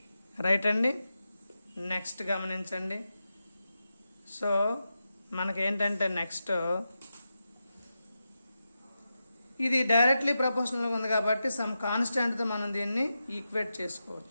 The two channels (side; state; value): both; inverted; correlation -0.90